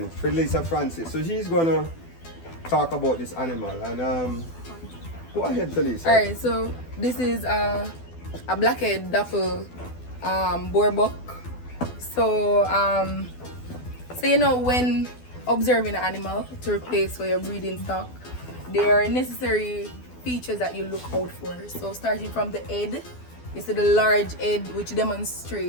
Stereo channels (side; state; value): right; late; 12 ms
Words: Felicia Francis. So she's gonna talk about this animal and go ahead, Felicia. Alright, so this is a blackhead dapple boar buck. So you know, when observing an animal to replace for your breeding stock, there are necessary features that you look out for. So starting from the head, you see the large head which